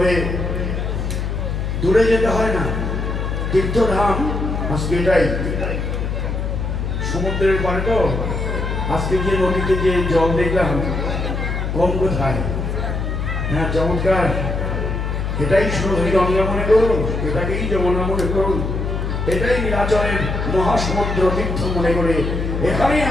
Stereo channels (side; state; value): left; noise; hum, 2 dB below the sound